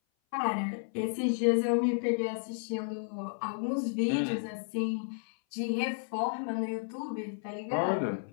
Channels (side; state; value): right; silent; 56 dB below the other